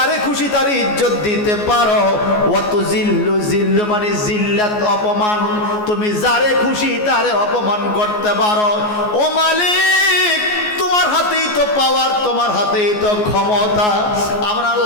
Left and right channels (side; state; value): right; late; 14 ms